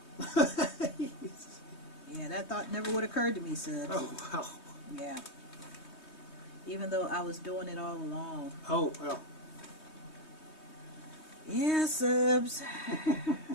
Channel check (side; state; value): right; late; 3.2 ms